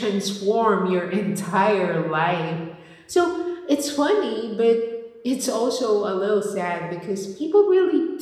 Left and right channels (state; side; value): identical; both; correlation 1.00